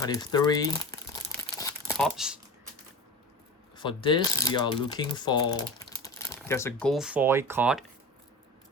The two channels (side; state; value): both; normal; correlation 0.31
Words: tops. For this, we are looking for, there's a gold foil card